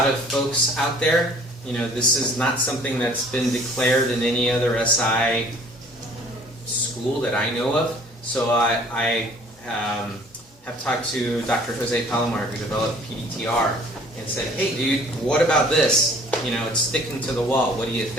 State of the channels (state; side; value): normal; both; correlation 0.53